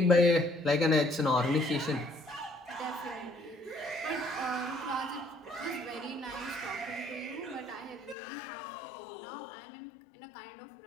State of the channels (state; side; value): drops out; right; at 8.2 s